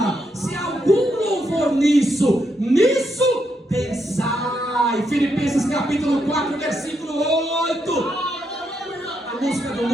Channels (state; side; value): normal; both; correlation 0.80